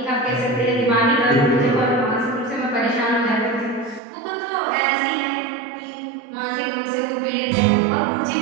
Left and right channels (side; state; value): left; drops out; at 4.0 s